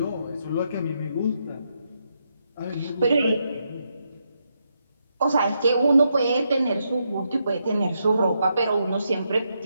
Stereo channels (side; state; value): both; inverted; correlation -0.81